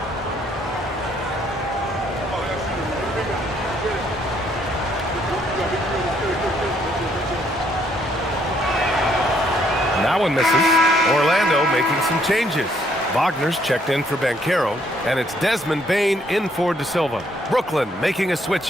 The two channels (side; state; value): both; normal; correlation 0.68